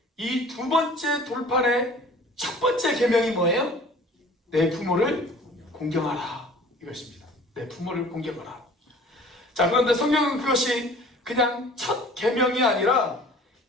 이 두 번째 돌판의 첫 번째 계명이 뭐예요? 내 부모를 공경하라, 이것입니다. 내 부모를 공경하라. 자, 그런데 성경은 그것이 그냥 첫 계명이 아니라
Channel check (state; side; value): normal; both; correlation 0.48